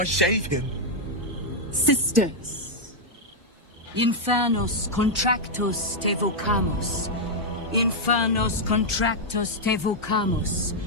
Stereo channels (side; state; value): both; normal; correlation -0.03